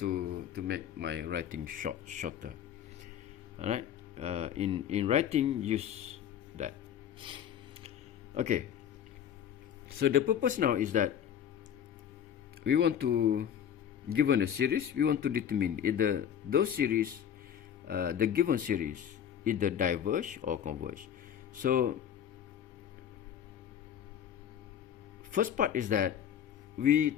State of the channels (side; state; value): right; quieter; 9.2 dB